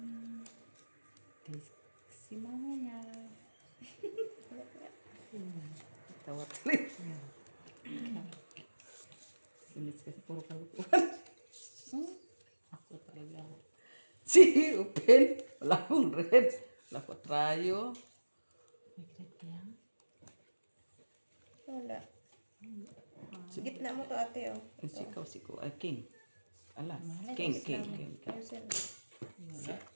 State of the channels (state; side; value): inverted; both; correlation -1.00